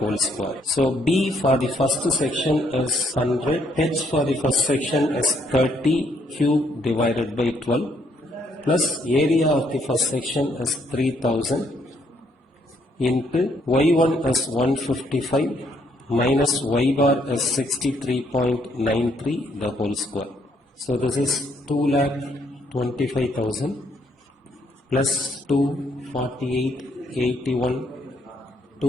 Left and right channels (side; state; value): both; normal; correlation 0.71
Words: square. So b for the first section is 100, h for the first section is 30 cube divided by 12 plus area of the first section is 3000 into y1 is 155 minus y bar is 63.93 the whole square. So this is 2,25,000 plus 248,81